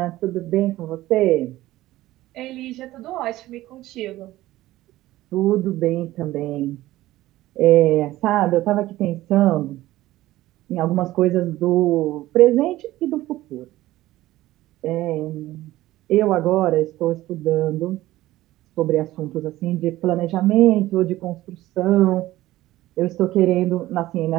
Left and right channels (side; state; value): left; quieter; 16.2 dB